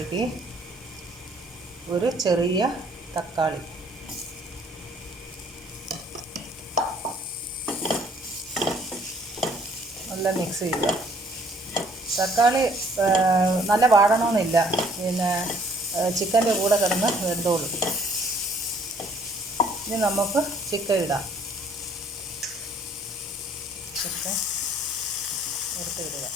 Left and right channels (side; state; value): both; normal; correlation 0.61